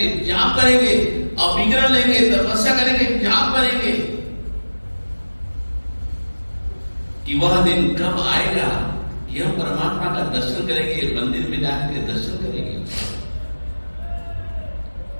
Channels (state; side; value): inverted; both; correlation -1.00